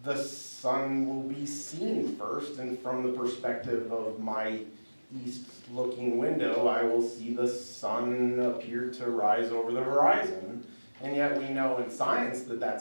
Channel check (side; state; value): both; inverted; correlation -1.00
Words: the sun will be seen first, and from the perspective of my east-looking window, I will see the sun appear to rise over the horizon. And yet we know in science that